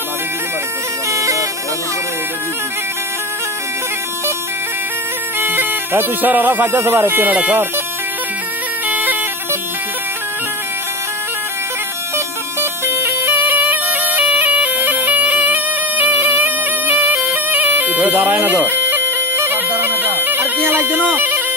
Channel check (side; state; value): both; normal; correlation 0.22